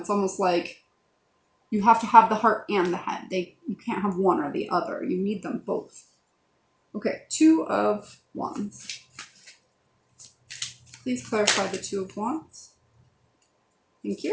almost like you have to have the heart and the head. You can't have one or the other. You need them both. Okay, Two of Wands. Please clarify the Two of Wands. Thank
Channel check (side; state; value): both; identical; correlation 1.00